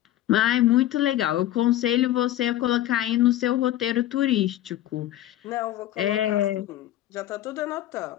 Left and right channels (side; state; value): right; quieter; 13.4 dB